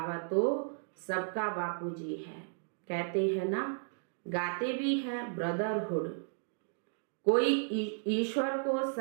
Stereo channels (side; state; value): left; silent; digital silence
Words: तो सबका बापूजी है। कहते हैं ना, गाते भी हैं ब्रदरहुड। कोई ईश्वर को